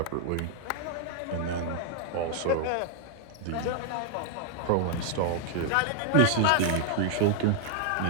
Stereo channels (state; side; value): different; both; correlation 0.00